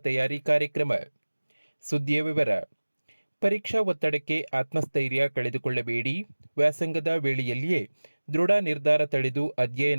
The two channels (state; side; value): inverted; both; correlation -1.00